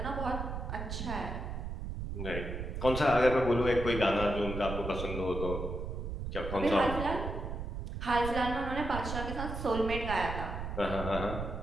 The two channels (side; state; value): right; noise; rumble, 5 dB below the sound